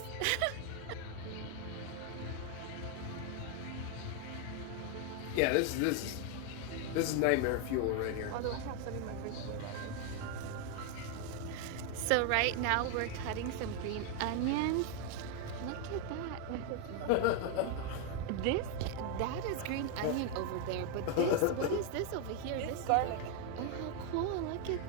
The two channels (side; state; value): both; different; correlation 0.01